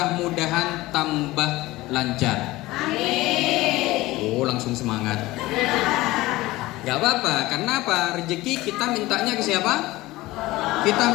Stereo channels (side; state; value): right; quieter; 18.9 dB